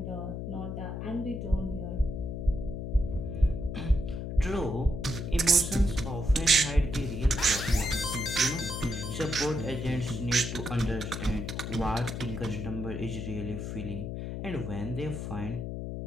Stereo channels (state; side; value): noise; left; hum, 5 dB below the sound